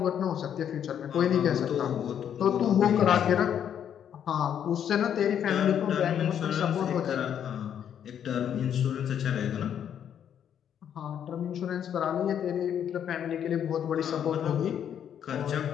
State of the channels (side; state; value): right; quieter; 9.1 dB